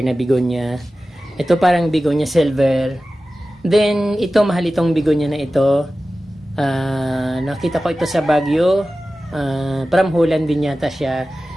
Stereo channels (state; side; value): normal; both; correlation 0.95